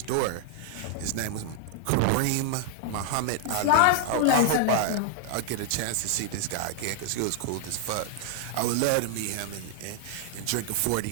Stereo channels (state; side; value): different; both; correlation -0.01